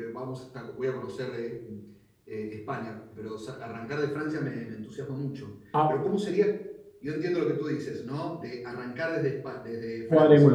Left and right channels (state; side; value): identical; both; correlation 1.00